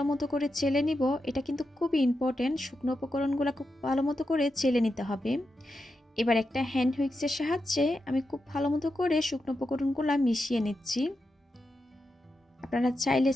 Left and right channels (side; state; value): both; normal; correlation 0.88